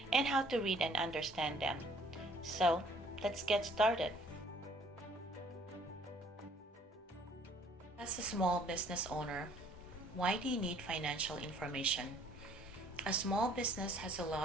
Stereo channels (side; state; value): both; normal; correlation 0.58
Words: and how to read and understand them. So, let's get started. As a small business owner, why do you need financial information? A small business has a